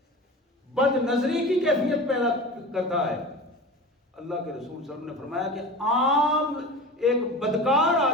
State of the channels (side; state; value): both; normal; correlation 0.32